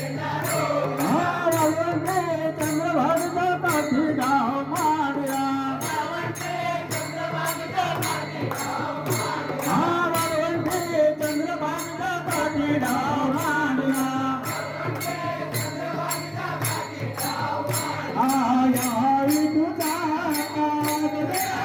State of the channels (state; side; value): identical; both; correlation 1.00